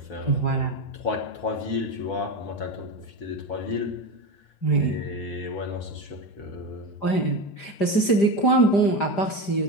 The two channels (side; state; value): right; late; 5.0 ms